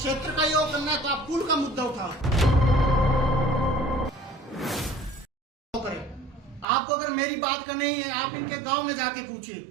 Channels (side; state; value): left; drops out; at 6.7 s